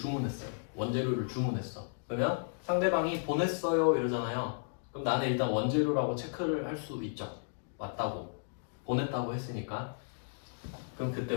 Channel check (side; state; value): right; silent; digital silence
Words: 원재료를 주문했어. 그러면 상대방이 보냈어요 이러잖아요. 그럼 나는 일단 원재료라고 체크를 할 수 있죠. 맞다고 보냈다고 했으니까. 그럼 그때